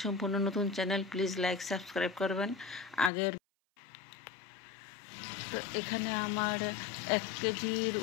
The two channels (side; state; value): right; drops out; at 3.1 s